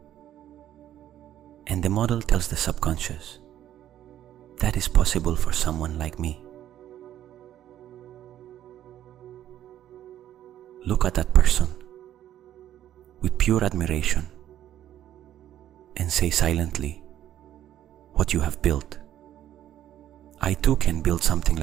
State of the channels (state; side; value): quieter; left; 11.6 dB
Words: and the model tells the subconscious that is possible for someone like me. Look at that person with pure admiration and say silently what you have built. I too can build something